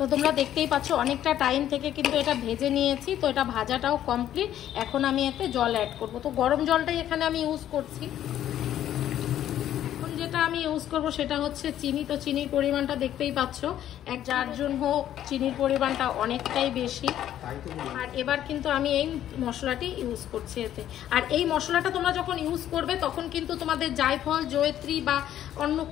তোমরা দেখতেই পাচ্ছ অনেকটা টাইম থেকে কিন্তু এটা ভেজে নিয়েছি, তো এটা ভাজাটাও কমপ্লিট। এখন আমি এতে জল অ্যাড করব। তো গরম জলটাই এখানে আমি ইউজ করছি। এখন যেটা আমি ইউজ করব সেটা হচ্ছে চিনি। তো চিনির পরিমাণটা দেখতেই পাচ্ছ, যার জন্য চিনির পরিমাণটা অনেকটাই বেশি। আর এবার কিন্তু আমি এই মশলাটি ইউজ করছি এতে। আর এই মশলাটা তোমরা যখন ইউজ করবে তখন কিন্তু তোমাদের জায়ফল, জয়ত্রী বা অন্য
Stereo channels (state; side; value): quieter; right; 11.5 dB